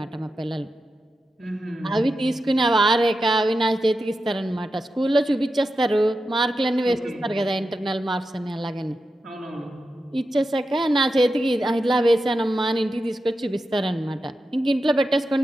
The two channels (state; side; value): normal; both; correlation 0.90